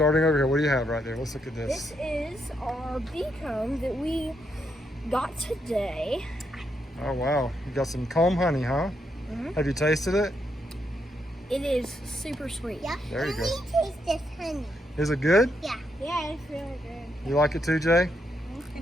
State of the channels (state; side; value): normal; both; correlation 0.79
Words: over here, what do you have right there? Let's look at this. This is our bee comb that we got today. Oh, wow. You got some comb honey, huh? Mm-hmm. Have you tasted it? It is super sweet. Yeah. There you go. Taste this honey. Is it good? Yeah. Yeah, it's really good. You like it too, Jay?